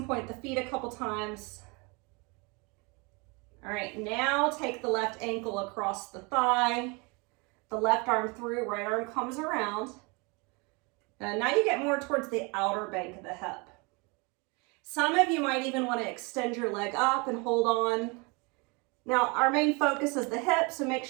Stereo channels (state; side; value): quieter; left; 29.3 dB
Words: point the feet a couple times. All right, now take the left ankle across the thigh, the left arm through, right arm comes around. And now you get more towards the outer bank of the hip. Some of you might even want to extend your leg up and hold on. Now, our main focus is the hip, so make